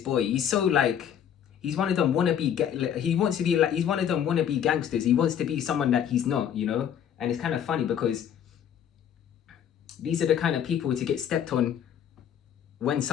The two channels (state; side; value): quieter; right; 9.1 dB